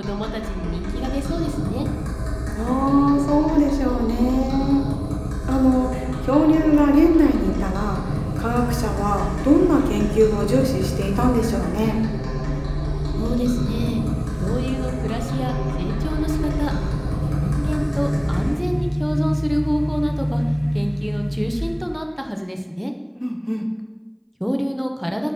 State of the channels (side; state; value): both; identical; correlation 1.00